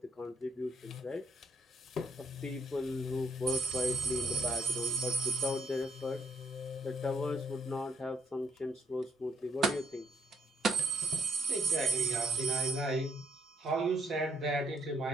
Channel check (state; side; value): normal; both; correlation 0.68